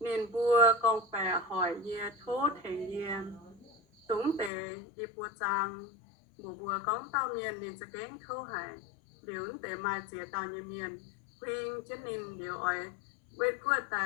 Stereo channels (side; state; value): right; drops out; at 4.5 s